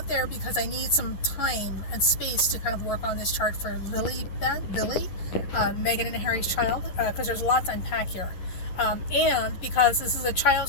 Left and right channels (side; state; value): right; late; 11 ms